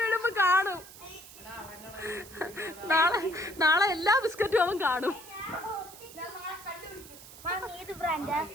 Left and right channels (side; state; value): right; noise; hiss, 17 dB below the sound